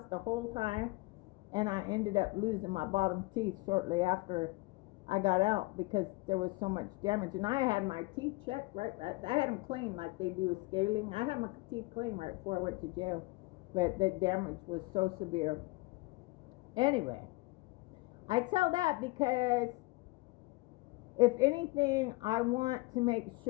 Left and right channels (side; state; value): right; quieter; 23.6 dB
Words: the whole time, and I ended up losing my bottom teeth shortly after I got out because there was so much damage. And I had my teeth checked right. I had them clean like they do with scaling. I had my teeth clean right before I went to jail, but the damage was so severe. Anyway, I tell that because if anything, I want to make